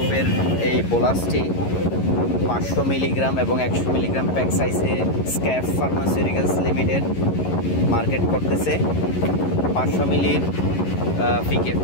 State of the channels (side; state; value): right; late; 11 ms